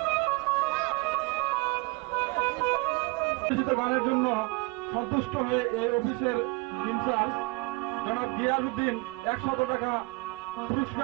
গানের জন্য সন্তুষ্ট হয়ে এই অফিসের ইনচার্জ জনাব গিয়াসউদ্দিন 100 টাকা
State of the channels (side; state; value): left; quieter; 26.3 dB